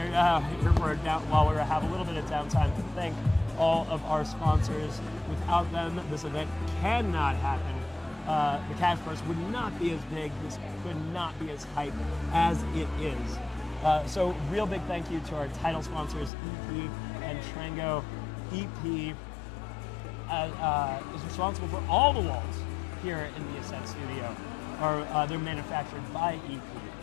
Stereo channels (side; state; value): right; drops out; at 16.3 s